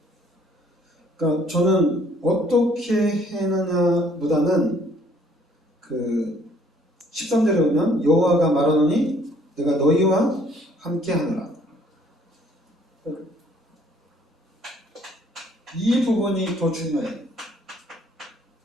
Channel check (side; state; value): both; normal; correlation 0.61